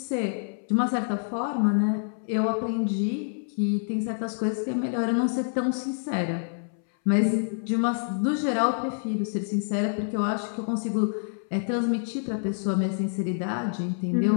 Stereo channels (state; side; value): silent; right; 60 dB below the other